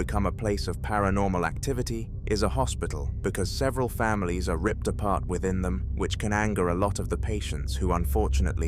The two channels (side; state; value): both; identical; correlation 1.00